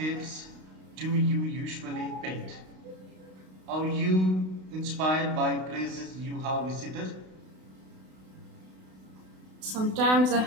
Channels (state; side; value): late; left; 32 ms